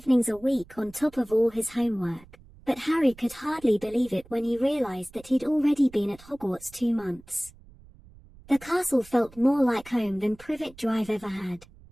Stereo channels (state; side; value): noise; right; rumble, 23 dB below the sound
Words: a week on top of all his homework, but Harry could hardly believe it when he realized that he'd already been at Hogwarts 2 months. The castle felt more like home than Privet Drive ever had.